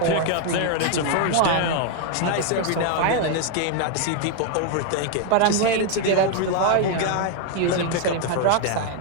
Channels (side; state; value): both; different; correlation 0.00